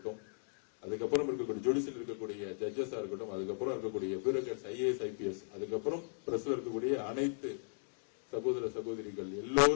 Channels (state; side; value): silent; right; digital silence